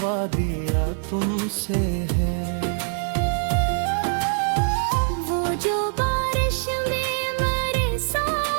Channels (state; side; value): silent; left; 63 dB below the other